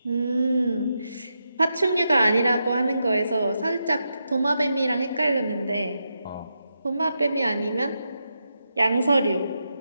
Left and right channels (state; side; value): inverted; both; correlation -0.86